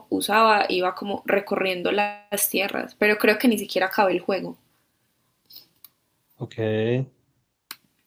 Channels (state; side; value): identical; both; correlation 1.00